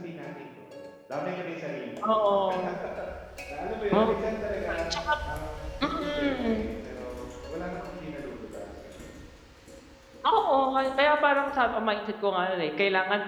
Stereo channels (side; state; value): both; identical; correlation 1.00